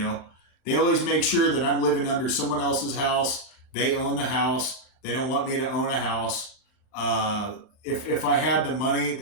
always make sure that I'm living under someone else's house. They own the house. They don't want me to own a house. If I had the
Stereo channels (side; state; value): right; late; 38 ms